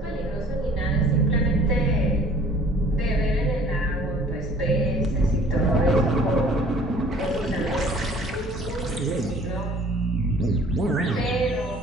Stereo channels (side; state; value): both; normal; correlation 0.52